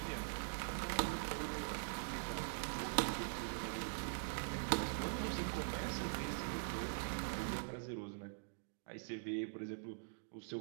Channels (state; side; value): silent; left; digital silence